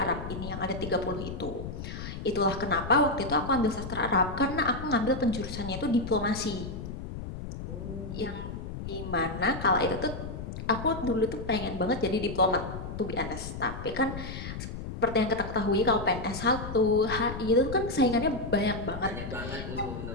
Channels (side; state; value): left; noise; rumble, 8 dB below the sound